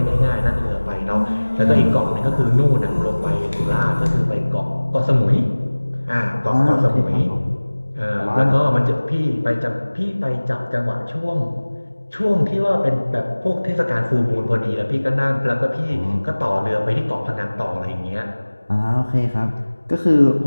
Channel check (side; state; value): both; inverted; correlation -1.00